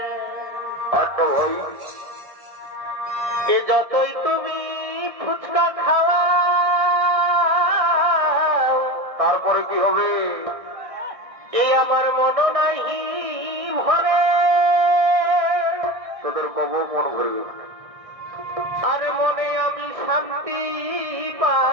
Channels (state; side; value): late; left; 1.6 ms